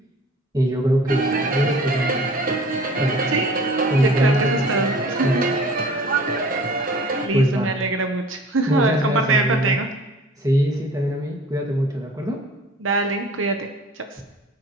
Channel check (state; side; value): normal; both; correlation 0.47